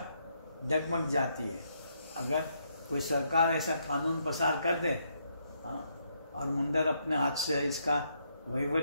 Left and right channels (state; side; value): inverted; both; correlation -0.76